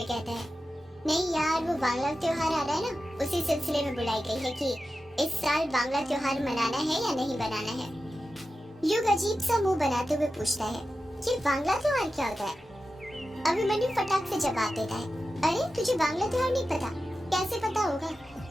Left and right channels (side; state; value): both; normal; correlation 0.92